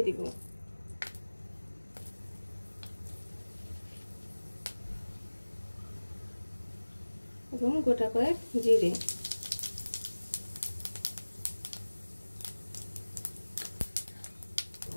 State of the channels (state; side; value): inverted; both; correlation -1.00